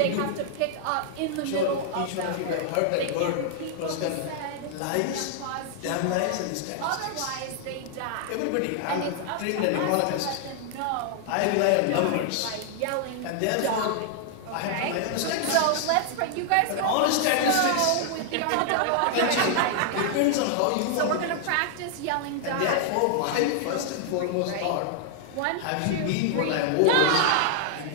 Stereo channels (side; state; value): both; different; correlation 0.00